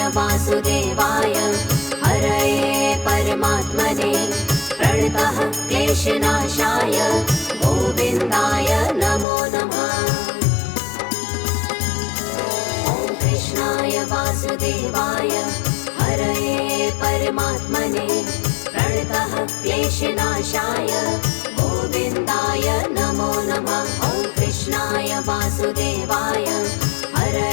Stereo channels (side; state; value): right; drops out; at 9.2 s